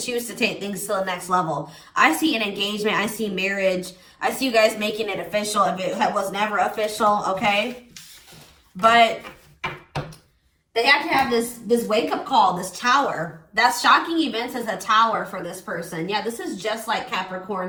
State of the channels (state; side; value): identical; both; correlation 1.00